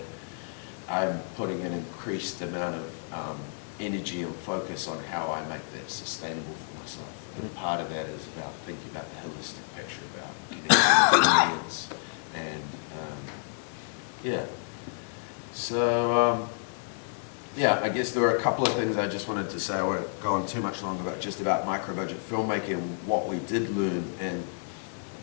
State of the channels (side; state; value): right; silent; digital silence